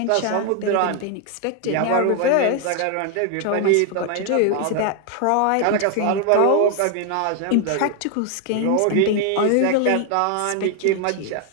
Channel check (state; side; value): different; both; correlation 0.01